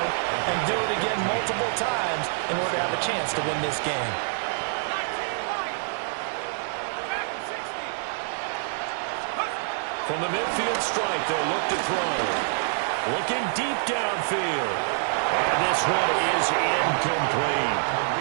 and do it again multiple times in order to have a chance to win this game. From the midfield stripe, they'll look to throw. Looking deep downfield. And this one is incomplete.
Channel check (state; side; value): silent; left; digital silence